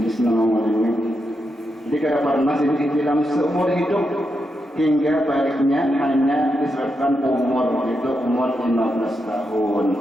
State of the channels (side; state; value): both; normal; correlation 0.85